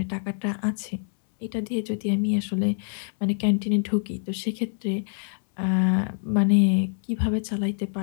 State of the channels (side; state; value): right; silent; 61 dB below the other